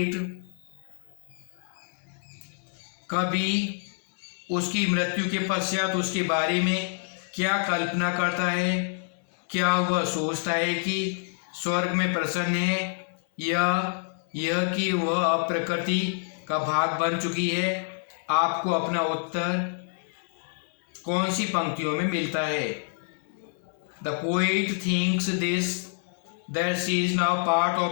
कभी उसकी मृत्यु के पश्चात उसके बारे में क्या कल्पना करता है? क्या वह सोचता है कि स्वर्ग में प्रसन्न है या यह कि वह अब प्रकृति का भाग बन चुकी है? आपको अपना उत्तर कौन सी पंक्तियों में मिलता है? The poet thinks this that she is now part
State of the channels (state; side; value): silent; right; 60 dB below the other